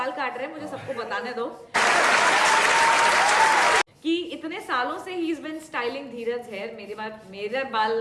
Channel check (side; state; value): both; identical; correlation 1.00